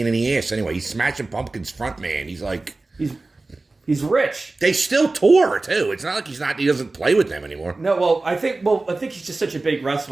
in the ass anyway. He's Smashing Pumpkins front man. He's like... He's rich. They still tour, too. It's not like he doesn't play with them anymore. No, I think he's just such a big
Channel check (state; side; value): quieter; left; 3.3 dB